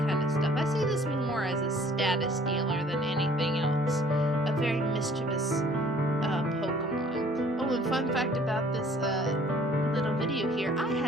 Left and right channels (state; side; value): normal; both; correlation 0.55